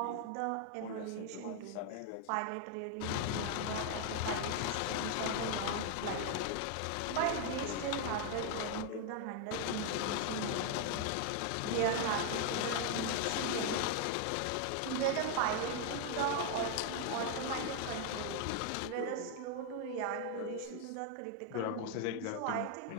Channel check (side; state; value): both; different; correlation 0.00